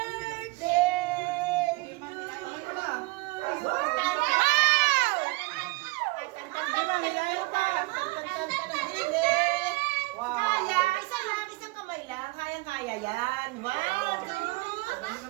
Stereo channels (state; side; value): quieter; left; 24.2 dB